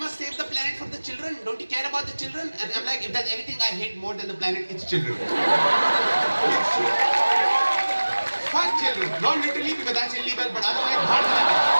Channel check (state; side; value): inverted; both; correlation -1.00